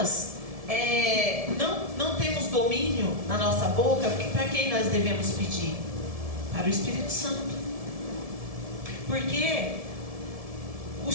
não temos domínio na nossa boca, para quem nós devemos pedir? Para o Espírito Santo. Porque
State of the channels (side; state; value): left; late; 1.7 ms